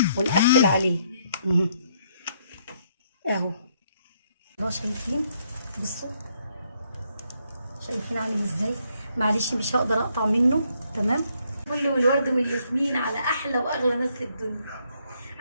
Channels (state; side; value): inverted; both; correlation -0.72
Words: ونقفل عليه اهو. شايفين؟ بصوا شايفين عامل ازاي؟ معلش مش هقدر اقطع منه. تمام. كل والورد والياسمين على احلى واغلى ناس في الدنيا.